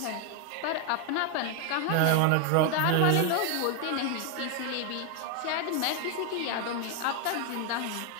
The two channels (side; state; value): both; different; correlation 0.01